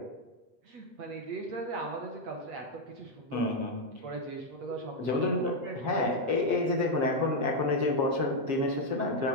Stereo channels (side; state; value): left; late; 7.4 ms